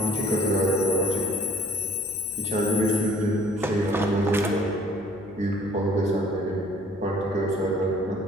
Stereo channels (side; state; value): left; noise; hum, 26 dB below the sound